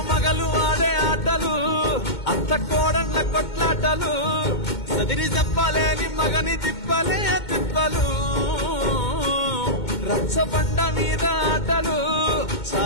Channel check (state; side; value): late; right; 2.2 ms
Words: మగలు ఆడే ఆటలు అత్త కోడళ్ళ కొట్లాటలు సదిరి చెప్పలేని మగని తిప్పలే తిప్పలు రచ్చబండ మీద ఆటలు